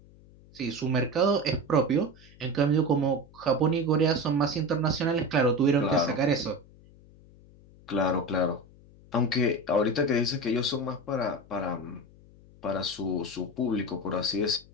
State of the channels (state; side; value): noise; left; hum, 24 dB below the sound